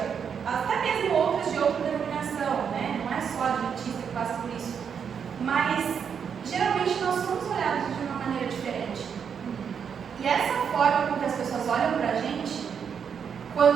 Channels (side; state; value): left; quieter; 7.1 dB